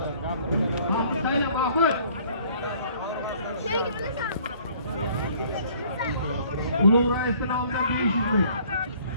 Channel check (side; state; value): both; inverted; correlation -0.57